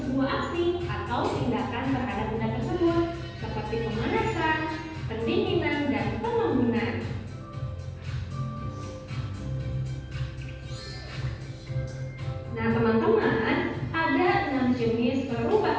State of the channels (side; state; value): both; identical; correlation 1.00